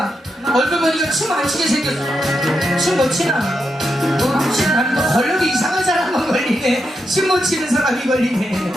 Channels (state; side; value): normal; both; correlation 0.85